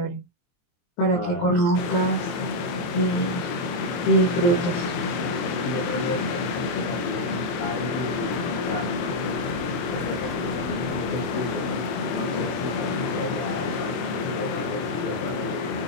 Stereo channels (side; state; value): right; late; 24 ms